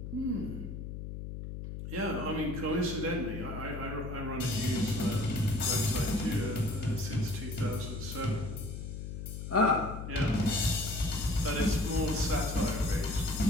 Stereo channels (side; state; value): left; noise; hum, 7 dB below the sound